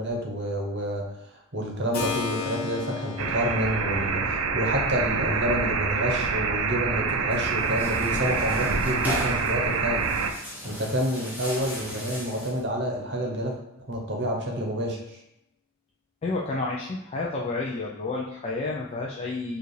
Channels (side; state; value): both; normal; correlation 0.20